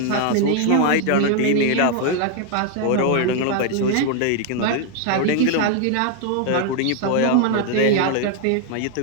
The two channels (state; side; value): different; both; correlation 0.00